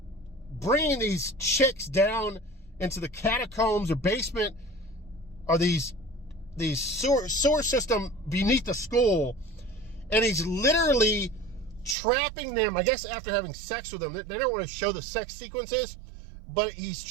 bringing these chicks down into the catacombs or basement, or these sewer system beneath the school, and he's literally trapping them, I guess after having sex with them. They don't want to show the sex sequences, but he's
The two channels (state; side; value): drops out; left; at 12.0 s